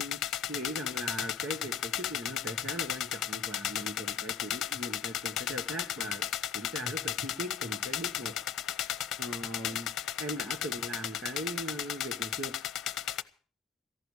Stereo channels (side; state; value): right; quieter; 6.4 dB